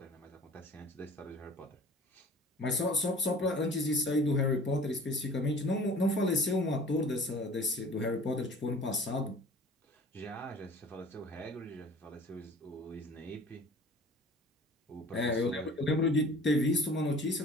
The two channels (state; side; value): normal; both; correlation 0.46